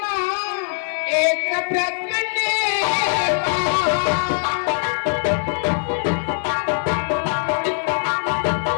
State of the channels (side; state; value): right; silent; digital silence